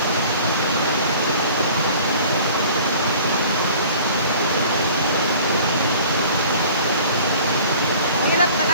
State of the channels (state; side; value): inverted; both; correlation -0.47